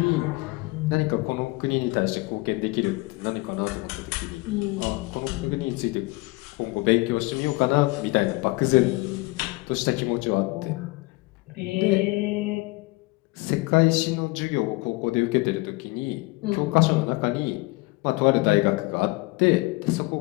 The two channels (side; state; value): right; quieter; 23.3 dB